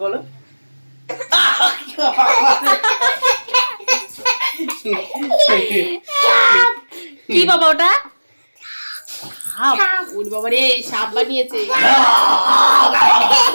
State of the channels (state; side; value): inverted; both; correlation -1.00